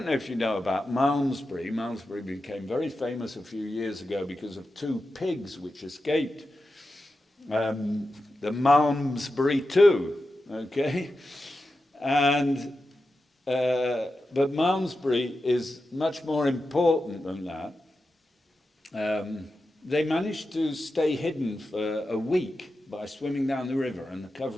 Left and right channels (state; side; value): normal; both; correlation 0.91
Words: know if you know about Malmesbury. Malmesbury became very famous a few years ago because of two pigs which escaped. The Malmesbury 2, okay? And, but Malmesbury is much more important than that. They managed to stay hidden for a week by swimming down the river and